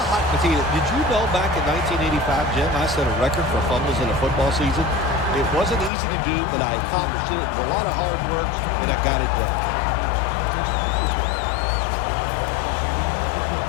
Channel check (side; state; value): right; drops out; at 5.9 s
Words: hot potato. Did you know back in 1985, Jim, I set a record for fumbles in a football season? It wasn't easy to do, but I accomplished it. It was a lot of hard work, and I got it done.